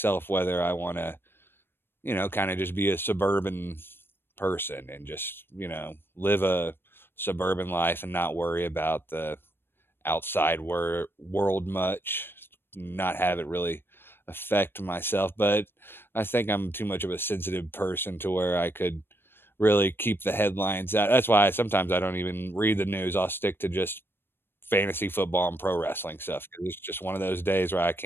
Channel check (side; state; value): right; late; 0.10 ms